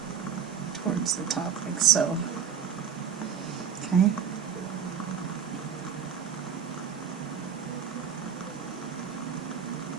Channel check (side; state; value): left; quieter; 7.5 dB